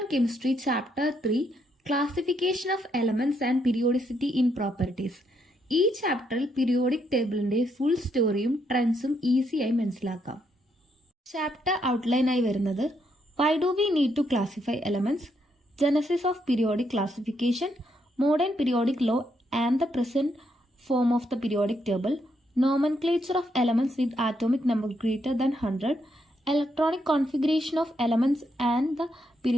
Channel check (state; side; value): normal; both; correlation 0.76